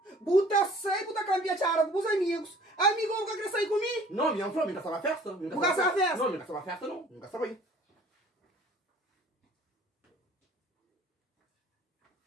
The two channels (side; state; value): both; normal; correlation 0.52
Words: buta sai, buta cambiar chara com os amigos. Amigo, nunca quer sair comigo? Não, minha falou, nunca sabe festa. Nunca sabe festa? Não, nunca sabe festa não. Nunca sabe aí.